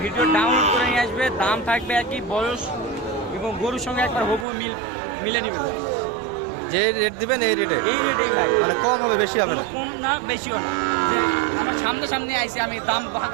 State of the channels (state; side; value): drops out; left; at 4.5 s